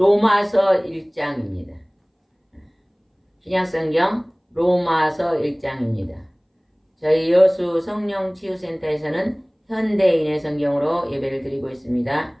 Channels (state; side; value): identical; both; correlation 1.00